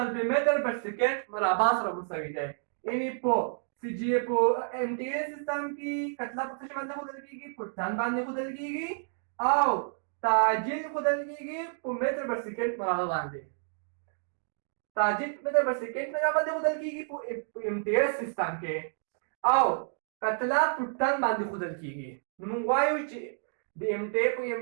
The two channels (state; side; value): silent; left; digital silence